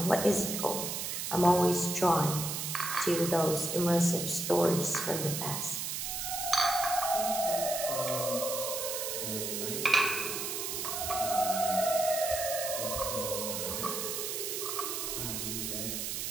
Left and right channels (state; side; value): noise; right; hiss, 3 dB below the sound